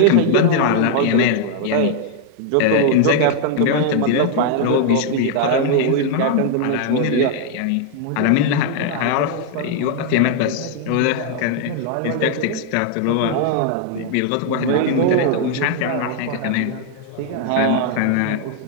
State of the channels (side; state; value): both; different; correlation 0.00